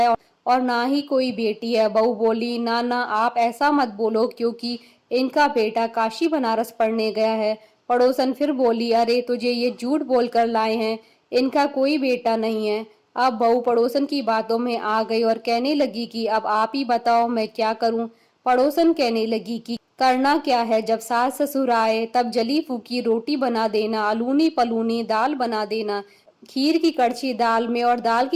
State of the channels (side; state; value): both; identical; correlation 1.00